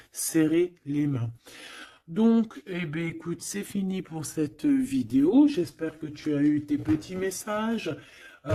serrer les mains. Donc, eh bien, écoute, c'est fini pour cette vidéo. J'espère que tu as eu tes petits messages.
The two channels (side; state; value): both; identical; correlation 1.00